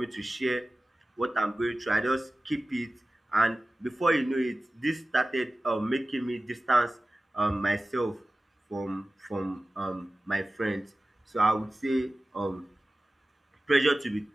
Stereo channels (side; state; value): both; normal; correlation 0.96